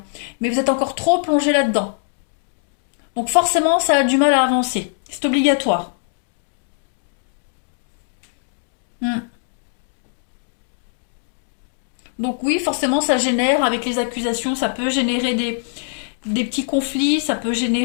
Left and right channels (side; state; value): right; silent; digital silence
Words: mais vous êtes encore trop plongé là-dedans. Donc forcément, ça a du mal à avancer. C'est obligatoire. Hmm. Donc oui, forcément, ça génère, avec les accusations, ça peut générer des petits conflits, ça peut